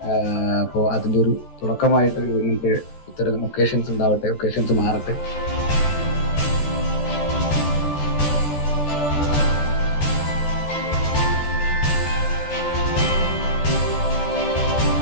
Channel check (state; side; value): late; right; 14 ms